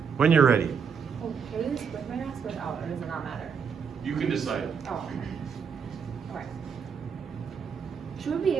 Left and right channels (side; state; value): left; quieter; 6.5 dB